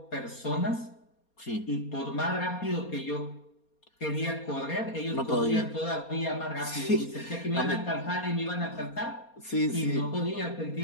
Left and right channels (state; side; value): late; right; 4.3 ms